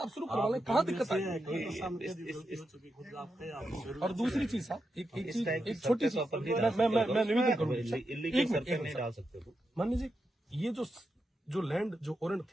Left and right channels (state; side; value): normal; both; correlation 0.86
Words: शुरू करवा लें, कहाँ दिक्कत है? और दूसरी चीज साहब, एक छोटी सी मैं निवेदन करूँगा, मान लीजिए ये जो लैंड जो ओरेंट